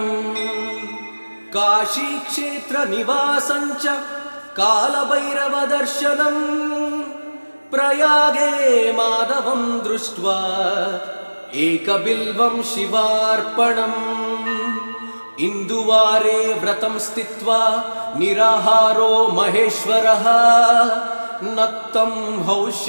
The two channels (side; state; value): both; inverted; correlation -1.00